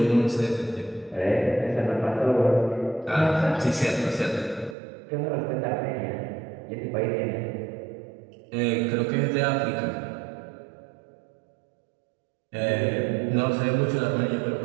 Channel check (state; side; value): drops out; left; at 4.8 s